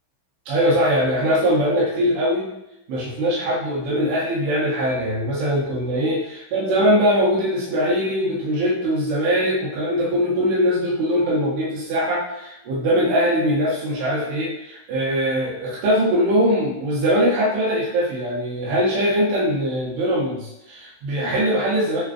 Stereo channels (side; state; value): left; late; 16 ms